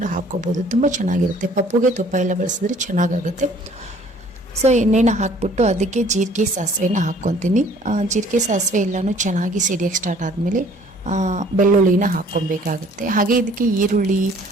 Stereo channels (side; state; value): both; normal; correlation 0.56